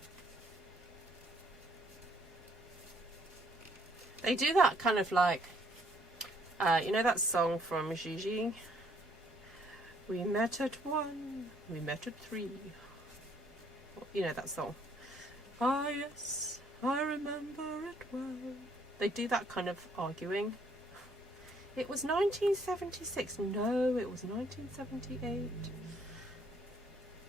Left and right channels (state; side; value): normal; both; correlation 0.66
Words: They do that kind of like, you know that song from Gigi? We met at 1, we met at 3. You know that song? Ah, yes, I remember it well. They do that kind of arguing. It was 1976. No, it was 1978.